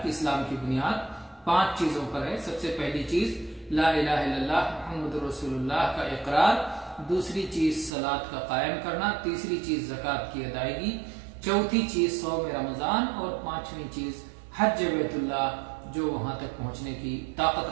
کہ اسلام کی بنیاد 5 چیزوں پر ہے۔ سب سے پہلی چیز لا الہ الا اللہ محمد رسول اللہ کا اقرار، دوسری چیز صلاۃ کا قائم کرنا، تیسری چیز زکوٰۃ کی ادائیگی، چوتھی چیز صوم رمضان، اور 5ویں چیز حج بیت اللہ جو وہاں تک پہنچنے کی طاقت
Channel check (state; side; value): drops out; left; at 7.9 s